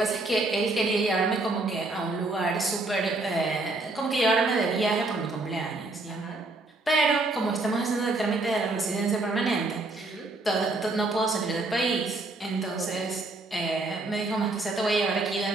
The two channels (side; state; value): left; quieter; 3.1 dB